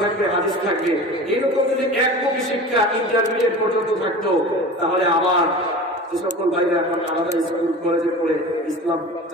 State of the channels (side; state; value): both; normal; correlation 0.35